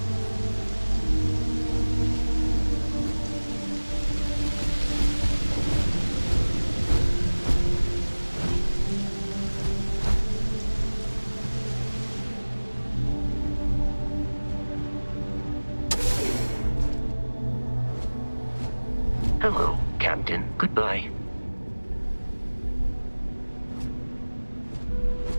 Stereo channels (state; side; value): inverted; both; correlation -1.00